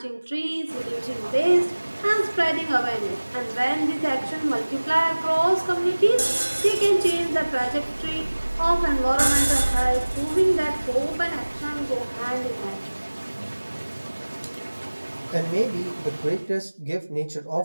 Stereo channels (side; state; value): both; inverted; correlation -1.00